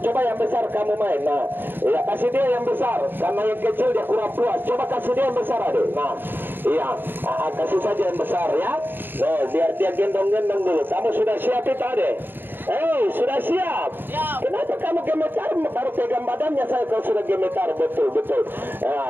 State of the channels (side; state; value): left; late; 0.095 ms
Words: Coba yang besar kamu main. Nah, ya kasih dia yang besar. Karena yang kecil dia kurang puas. Coba kasih dia yang besar, adek. Nah, iya, kasih saja yang besar ya. Nah, biar dia gendong-gendong dulu. Kamu sudah siap itu, adek? Sudah siap? Siap. Kenapa kamu gemetar? Baru pegang badannya saya kalau sudah gemetar. Betul-betul. Nah,